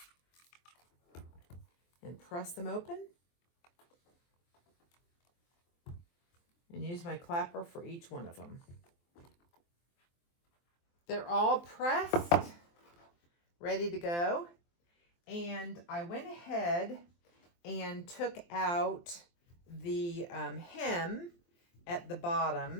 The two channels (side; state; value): right; late; 23 ms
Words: and press them open, and use my clapper for each one of them. They're all pressed, ready to go. And I went ahead and took out the hem at the